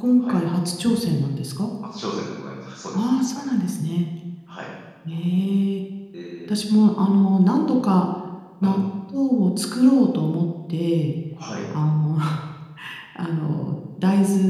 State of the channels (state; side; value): identical; both; correlation 1.00